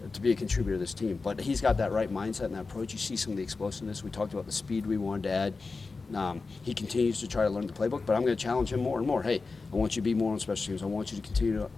to be a contributor to this team. But he's got that right mindset and that approach. You see some of the explosiveness. We talked about the speed we wanted to add. He continues to try to learn the playbook, but I'm going to challenge him more and more. Hey, I want you to be more on special teams. I want you to continue to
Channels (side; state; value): right; quieter; 4.1 dB